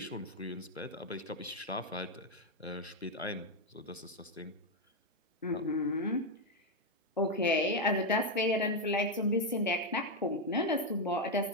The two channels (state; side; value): normal; both; correlation 0.03